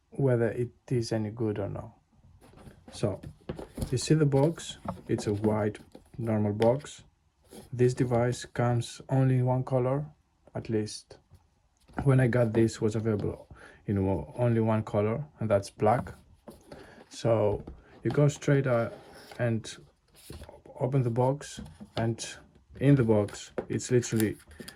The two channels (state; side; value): identical; both; correlation 1.00